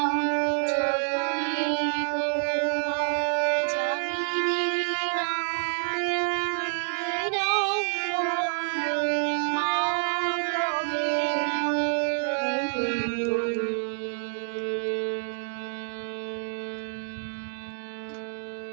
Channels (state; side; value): silent; left; 60 dB below the other